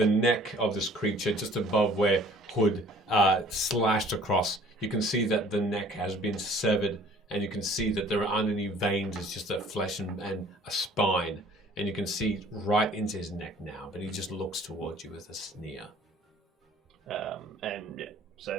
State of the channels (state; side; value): normal; both; correlation 0.53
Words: neck of this creature just above where Hood slashed across, you can see that the neck has been severed, and you can see that there aren't any veins. It's just a flesh and a spine, and you can see right into his neck now, but he just looks towards you with a sneer. And yeah, so